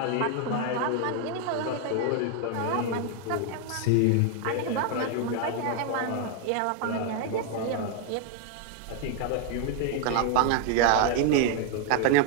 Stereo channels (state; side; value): different; both; correlation 0.00